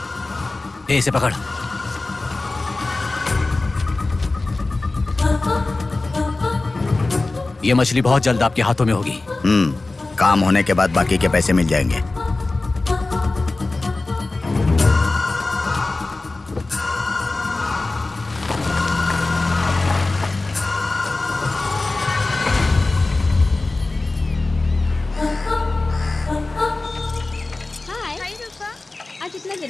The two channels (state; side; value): quieter; right; 3.2 dB